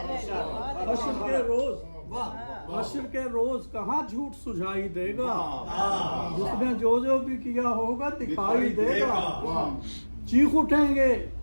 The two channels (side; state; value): both; inverted; correlation -1.00